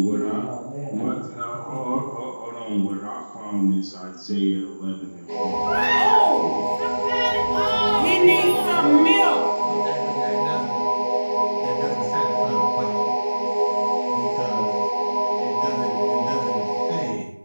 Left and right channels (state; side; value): inverted; both; correlation -1.00